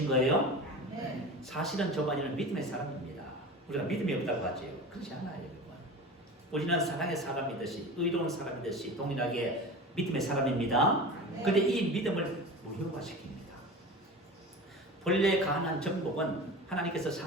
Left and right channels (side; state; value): both; normal; correlation 0.32